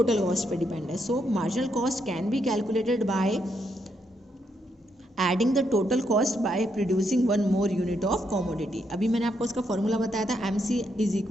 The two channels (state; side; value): normal; both; correlation 0.78